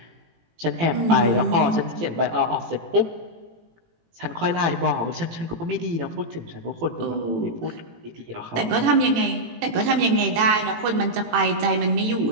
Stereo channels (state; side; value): late; left; 18 ms